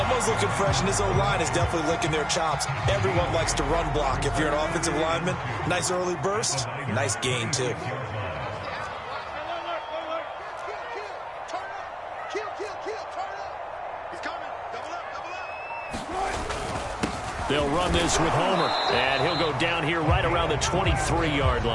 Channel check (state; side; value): identical; both; correlation 1.00